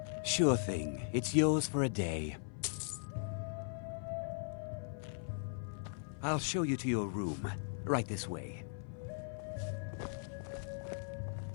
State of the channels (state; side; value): silent; right; 52 dB below the other